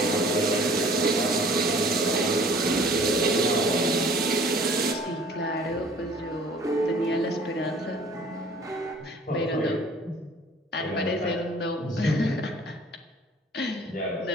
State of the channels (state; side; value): normal; both; correlation 0.51